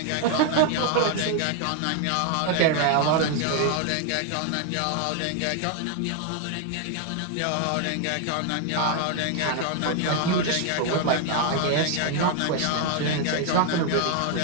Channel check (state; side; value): different; both; correlation 0.00